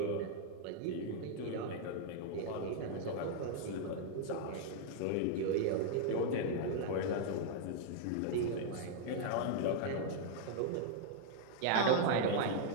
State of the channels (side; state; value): both; different; correlation 0.00